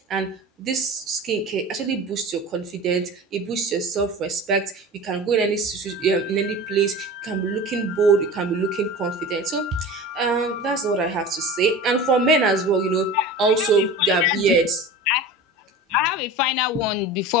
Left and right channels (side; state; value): both; normal; correlation 0.35